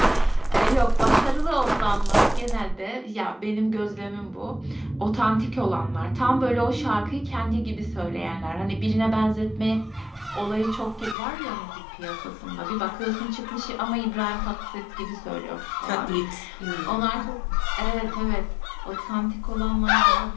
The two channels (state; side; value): drops out; right; at 11.2 s